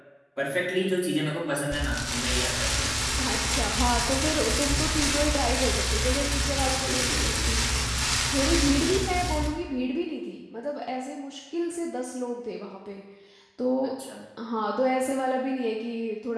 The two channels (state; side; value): identical; both; correlation 1.00